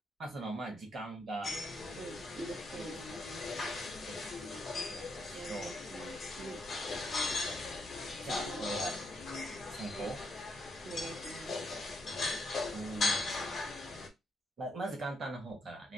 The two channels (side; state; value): both; normal; correlation 0.78